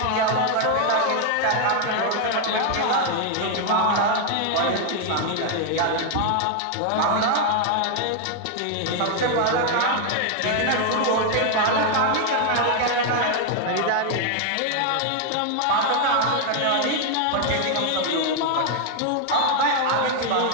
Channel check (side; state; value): both; different; correlation 0.00